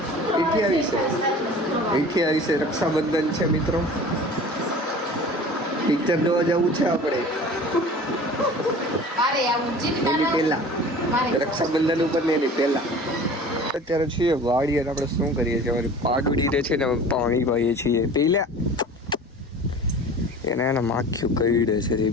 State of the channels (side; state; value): both; normal; correlation 0.41